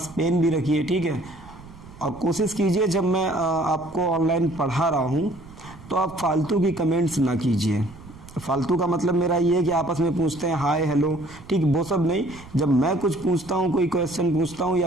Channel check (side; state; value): right; noise; rumble, 19 dB below the sound